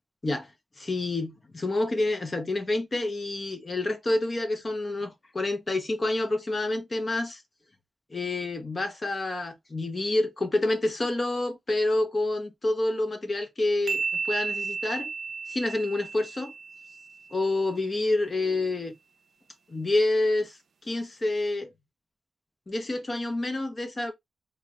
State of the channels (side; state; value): both; normal; correlation 0.94